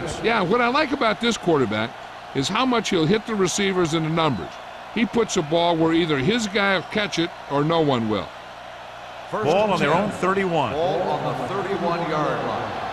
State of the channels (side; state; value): both; identical; correlation 1.00